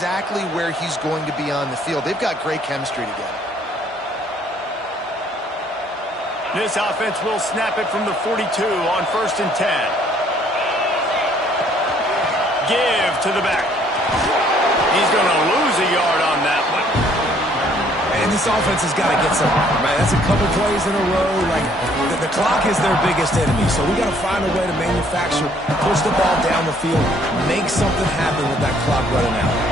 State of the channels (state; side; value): normal; both; correlation 0.62